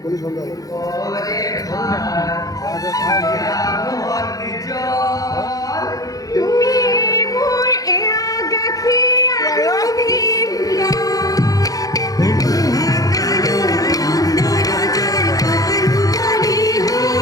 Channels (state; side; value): late; right; 0.17 ms